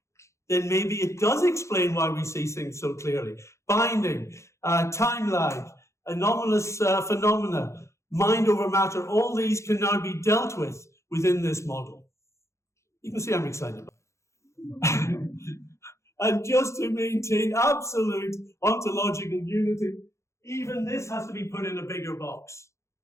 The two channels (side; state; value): right; late; 0.14 ms